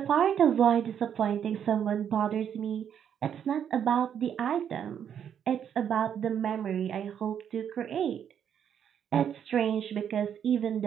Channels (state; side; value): quieter; left; 8.7 dB